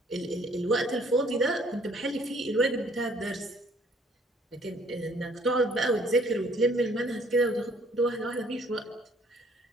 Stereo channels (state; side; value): normal; both; correlation 0.61